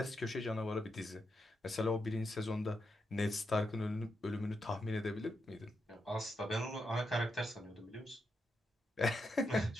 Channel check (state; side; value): normal; both; correlation 0.84